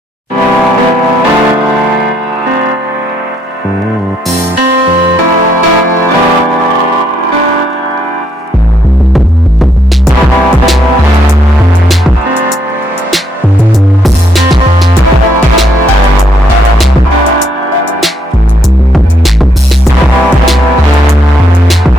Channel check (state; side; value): normal; both; correlation 0.73